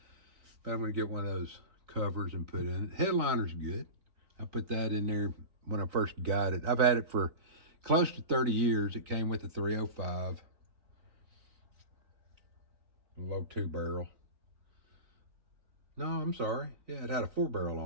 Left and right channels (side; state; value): left; late; 3.9 ms